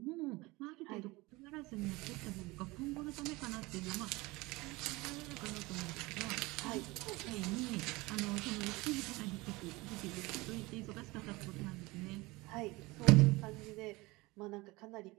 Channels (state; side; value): quieter; left; 22.3 dB